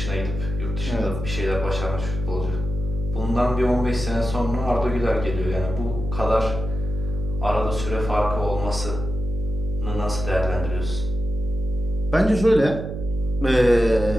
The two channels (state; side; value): noise; right; hum, 8 dB below the sound